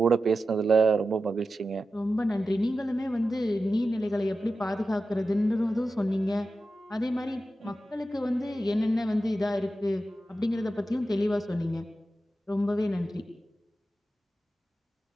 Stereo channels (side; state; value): both; normal; correlation 0.92